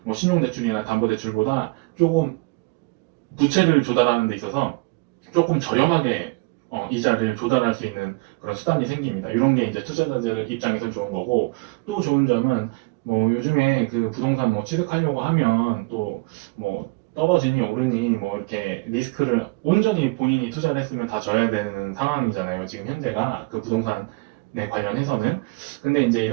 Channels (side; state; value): left; quieter; 26.3 dB